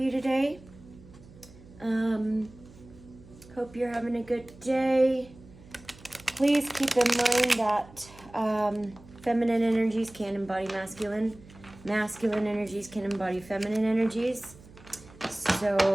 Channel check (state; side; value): noise; right; hum, 22 dB below the sound